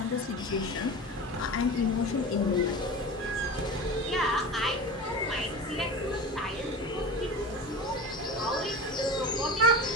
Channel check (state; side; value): normal; both; correlation 0.31